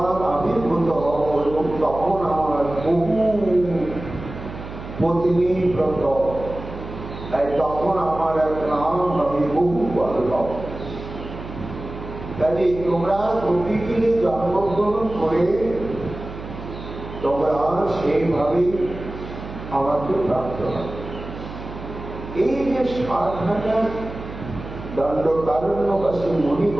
আবির্ভূত হব এবং তখন আমার বহু পত্নী ব্রত, তাই তখন আমার এক নাম আমি বহু বল্লভ। তাই তোমরা গোপীকে জন্মগ্রহণ করে তোমরা সেইভাবে আমাকে প্রাপ্ত হবে। এই যে 60,000 দণ্ডকারণ্যবাসী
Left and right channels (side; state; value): right; noise; hum, 11 dB below the sound